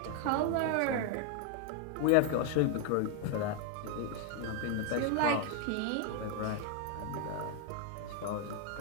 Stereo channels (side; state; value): both; different; correlation 0.01